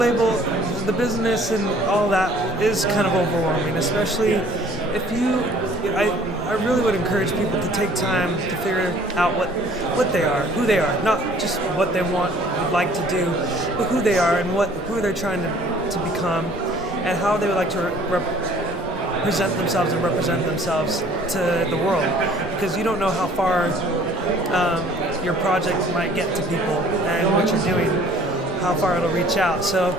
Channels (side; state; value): both; normal; correlation 0.54